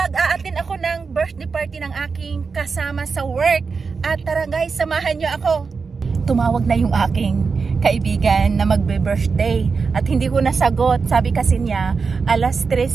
ako ng birthday party ng aking kasama sa work. At tara guys, samahan nyo ako. Tumawag na yung aking kaibigan na magbe-birthday. At hindi ko nasagot. Sabi kasi niya, alas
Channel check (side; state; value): left; quieter; 5.0 dB